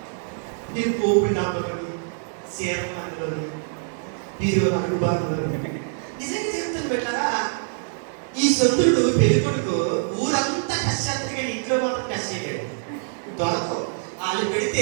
నేను పోపులు డాబాలోని, సీరమాలోని, వీరు అడుగుబాటులోని. నిజంగా చెప్తాను పెట్టారా, ఈ సొంతుడు పెళ్లి కొడుకు ఊరంతా కష్టాత్రిగా ఇంట్లో మాత్రం కష్ట చేయడు. దొరకవు వాళ్ళు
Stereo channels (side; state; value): left; silent; 62 dB below the other